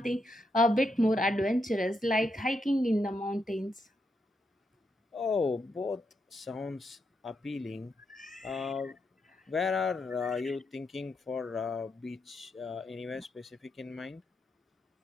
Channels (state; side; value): normal; both; correlation 0.82